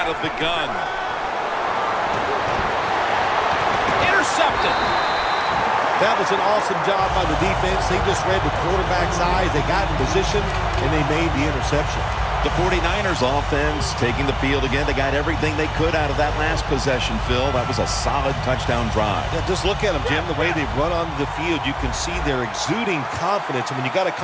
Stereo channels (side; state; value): both; identical; correlation 1.00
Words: of the gun. Intercepted. That was an awesome job by the defense. They just read the quarterback's eyes. They got in position, and they made the interception. The 49ers offense taking the field again. They got everything they could out of that last possession, Phil. That was a solid touchdown drive. Yeah, just look at them, Jim. The way they run onto the field, you can see they're exuding confidence. And when you got a